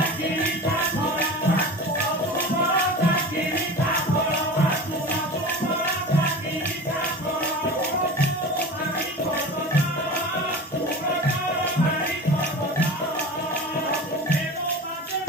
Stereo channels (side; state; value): both; normal; correlation 0.33